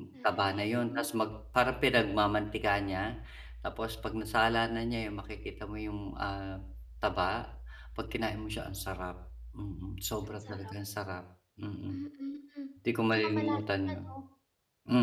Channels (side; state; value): both; identical; correlation 1.00